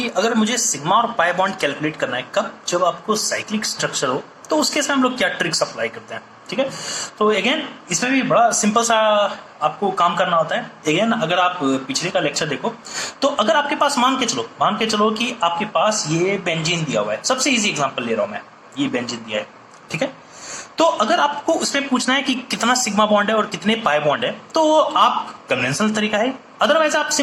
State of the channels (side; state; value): both; identical; correlation 1.00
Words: अगर मुझे सिग्मा और पाई बॉन्ड कैलकुलेट करना है, कब? जब आपको साइक्लिक स्ट्रक्चर हो, तो उसके साथ हम लोग क्या ट्रिक्स अप्लाई करते हैं, ठीक है। तो अगेन इसमें भी बड़ा सिंपल सा आपको काम करना होता है। अगेन अगर आप पिछले का लेक्चर देखो, तो अगर आपके पास मान के चलो कि आपके पास ये बेंजीन दिया हुआ है, सबसे इजी एग्जांपल ले रहा हूं मैं, ये बेंजीन दिया है, ठीक है। तो अगर आपको उसमें पूछना है कि कितना सिग्मा बॉन्ड है और कितने पाई बॉन्ड है, तो आप कन्वेंशनल तरीका है। अदरवाइज आप